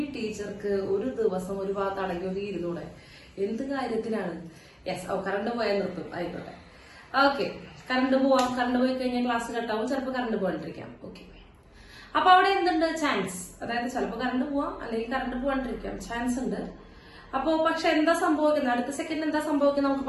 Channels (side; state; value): both; identical; correlation 1.00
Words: ടീച്ചർക്ക് ഒരു ദിവസം ഒരു ഭാഗത്ത് അടങ്ങി ഒരു ഇരുന്നൂടെ, എന്ത് കാര്യത്തിനാണ്. കറണ്ട് പോയാൽ നിർത്തും, ആയിക്കോട്ടെ. കറണ്ട് പോവാം. കറണ്ട് പോയി കഴിഞ്ഞാൽ ക്ലാസ് കട്ടാവും, ചിലപ്പോൾ കറണ്ട് പോകാണ്ടിരിക്കാം. അപ്പൊ അവിടെ എന്തുണ്ട്? ചാൻസ്. അതായത് ചിലപ്പോൾ കറണ്ട് പോവാം, അല്ലെങ്കിൽ കറണ്ട് പോകാണ്ടിരിക്കാം, ചാൻസ് ഉണ്ട്. അപ്പോ പക്ഷെ എന്താ സംഭവിക്കുന്നത്, അടുത്ത സെക്കൻഡ് എന്താ സംഭവിക്കുന്നത് നമുക്ക്